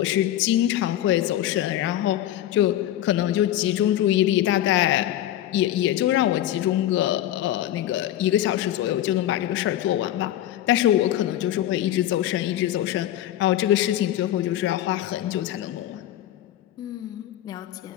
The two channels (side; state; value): right; quieter; 12.8 dB